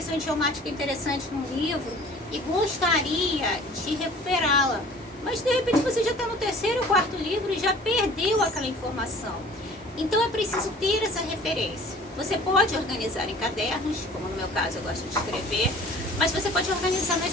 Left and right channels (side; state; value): both; normal; correlation 0.48